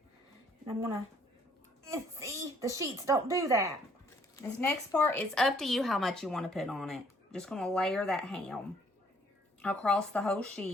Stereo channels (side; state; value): both; normal; correlation 0.63